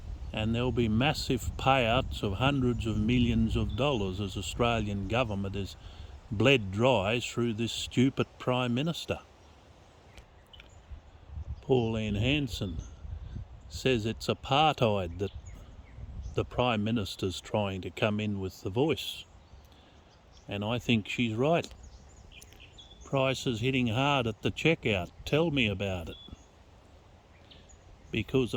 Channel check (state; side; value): identical; both; correlation 1.00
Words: and there'll be massive payouts of hundreds of millions of dollars as Australian government is bled dry through this stupid Prime Minister. Pauline Hanson says it's apartheid that the Prime Minister's trying to come in with the voice. And I think she's right. Prices hitting hard at the checkout. Tell me about it. Because